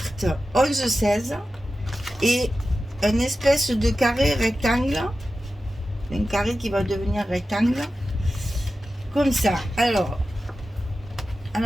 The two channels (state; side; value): normal; both; correlation 0.93